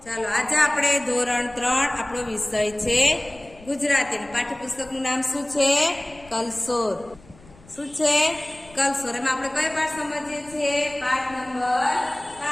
ચાલો આજે આપણે ધોરણ 3 આપણો વિષય છે ગુજરાતી. પાઠ્યપુસ્તકનું નામ શું છે? કલસોર. શું છે? કલસોર. એમાં આપણે કઈ પાઠ સમજીએ છીએ? પાઠ નંબર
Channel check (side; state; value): left; noise; rumble, 24 dB below the sound